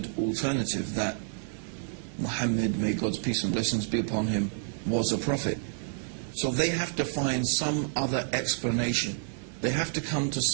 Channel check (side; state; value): left; silent; 58 dB below the other